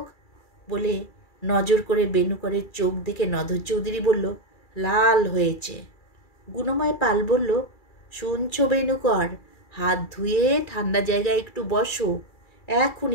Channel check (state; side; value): late; right; 2.3 ms